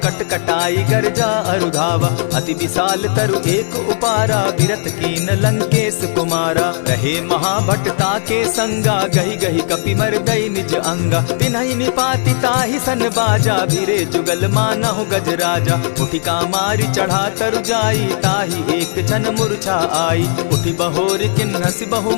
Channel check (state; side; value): silent; right; digital silence